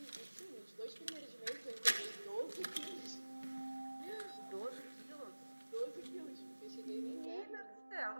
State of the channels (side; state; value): both; inverted; correlation -1.00